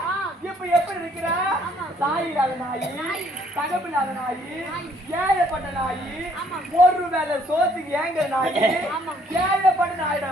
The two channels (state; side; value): normal; both; correlation 0.64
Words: இப்ப எப்படி இருக்கிறா தாய் இல்லாத நாய் தகப்பில்லாத நாய் ஏழைப்பட்ட நாய் ஒரு வேலை சோத்துக்கு ஏங்க நாய் ஏழைப்பட்ட